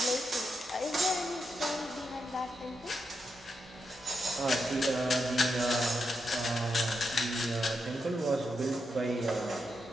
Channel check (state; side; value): normal; both; correlation 0.84